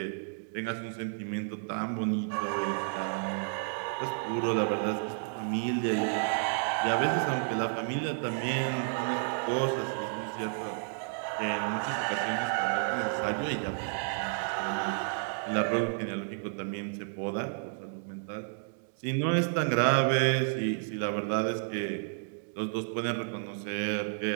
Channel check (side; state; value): left; silent; digital silence